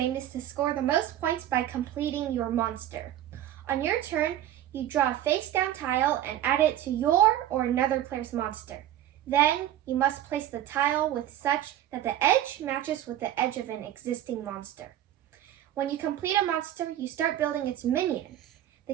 is to score the most points by completing your monster. On your turn, you draw a face-down tile and add it to your or another player's monster. Then, you must place the tile with such that the edge matches with the edge of an existing monster. When you complete a monster, you start building its minion. The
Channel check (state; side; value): quieter; left; 12.2 dB